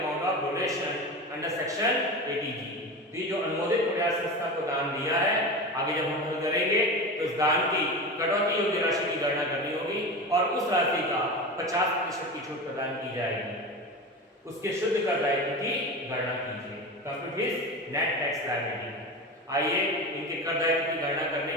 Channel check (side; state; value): both; normal; correlation 0.27